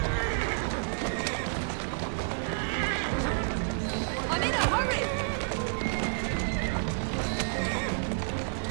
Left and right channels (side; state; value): left; silent; 58 dB below the other